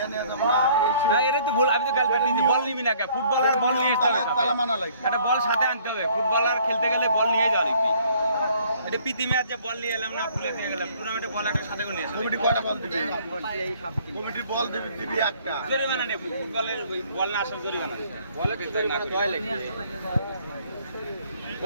ফুটবলার বল নিয়ে একটা বল সাথে আনতে হবে। ফুটবলার খেলতে গেলে বল নিয়ে যাওয়া লিখবি। এটা প্রীতি ম্যাচ যে বল নিয়ে এলাম না, ভুলে দিয়ে গেলাম। টুর্নামেন্টে বল একটা সাথে করে নিয়ে আসলাম। কমিটি কয়টা বল দিবে? কমিটি বল দিবি একটা। জরিমানা নেব। ফুটবলের বল না আসার জরিমানা। বলে তো জরিমানা কয় লাগবে?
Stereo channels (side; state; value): both; inverted; correlation -0.59